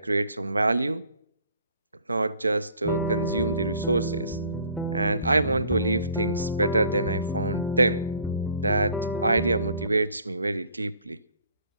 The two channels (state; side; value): inverted; both; correlation -0.57